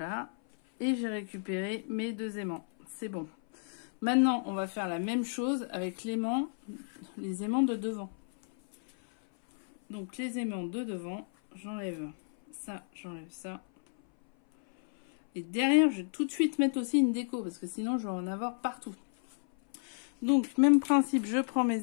Et j'ai récupéré mes deux aimants. C'est bon. Maintenant, on va faire la même chose avec les aimants de devant. Donc, les aimants de devant, j'enlève ça, j'enlève ça. Et derrière, je vais tout de suite mettre aussi une déco, parce que sinon, je vais en avoir partout. Donc, même principe, je prends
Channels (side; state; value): right; silent; 56 dB below the other